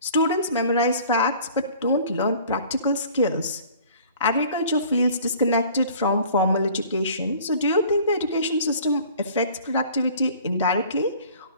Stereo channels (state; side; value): inverted; both; correlation -0.49